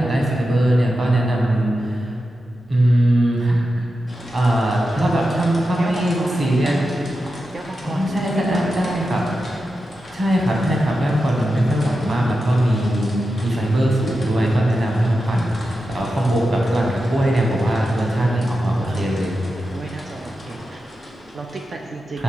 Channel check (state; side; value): normal; both; correlation 0.90